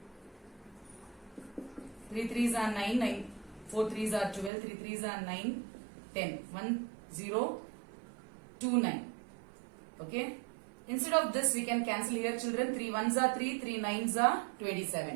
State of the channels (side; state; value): left; drops out; at 4.5 s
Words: 3 threes are 9, 9, 4 threes are 12, 3 threes are 9, 10, 1, 0, 2, 9. Okay. Instead of this, we can cancel here, children. 3 ones are 3, 3 nines are